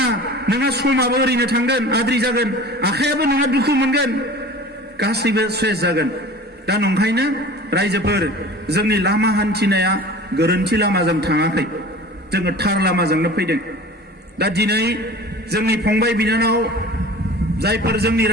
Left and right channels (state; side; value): normal; both; correlation 0.40